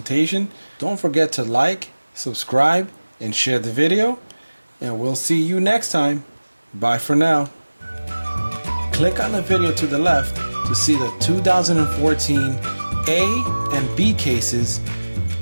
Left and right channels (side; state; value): both; inverted; correlation -1.00